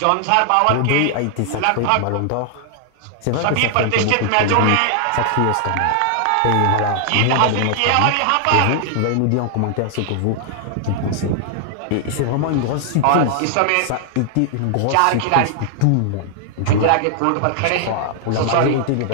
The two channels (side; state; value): both; different; correlation 0.00